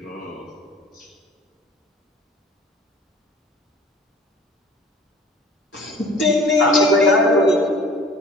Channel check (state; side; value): normal; both; correlation 0.47